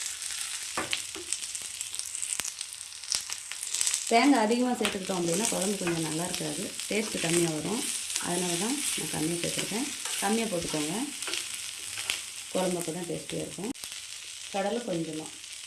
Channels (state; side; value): identical; both; correlation 1.00